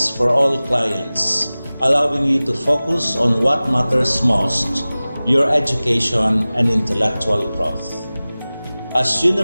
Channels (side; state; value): both; inverted; correlation -0.98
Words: for all clients, allowing you to focus on what matters most, your education and intellectual growth. As